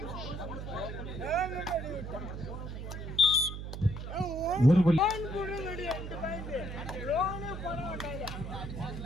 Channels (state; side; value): noise; right; hum, 7 dB below the sound